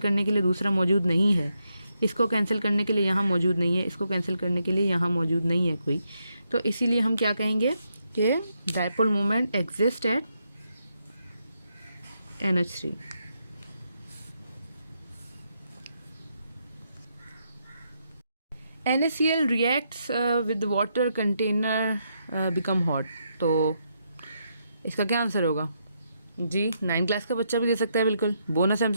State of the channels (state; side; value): inverted; both; correlation -0.80